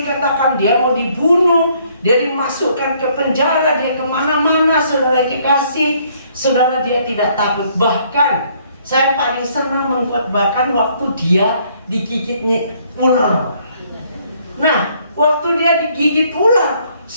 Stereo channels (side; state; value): both; inverted; correlation -0.65